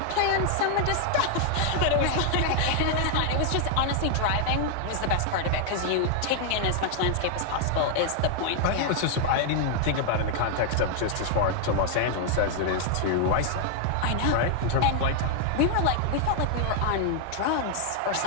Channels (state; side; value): different; both; correlation 0.00